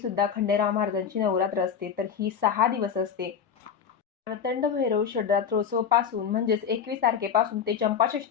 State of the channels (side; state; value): right; quieter; 7.5 dB